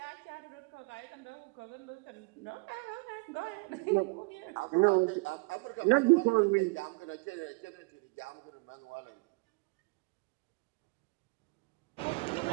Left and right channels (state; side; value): quieter; left; 30.2 dB